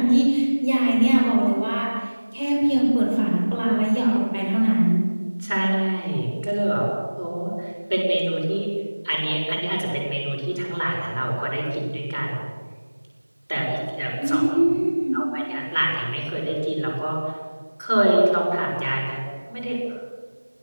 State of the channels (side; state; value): both; inverted; correlation -1.00